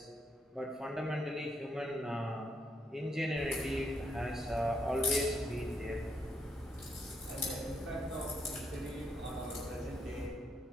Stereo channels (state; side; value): normal; both; correlation 0.77